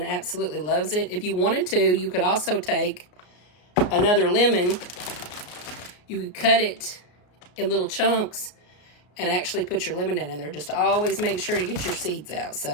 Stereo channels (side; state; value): right; late; 33 ms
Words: absolutely loves it. If you wanted to, you could also take another lemon. You could cut it in little chunks and actually put your lemon down in there. Just always make sure to get your seeds out.